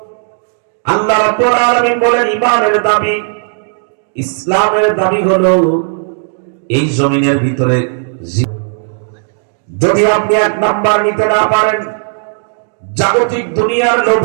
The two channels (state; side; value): silent; left; digital silence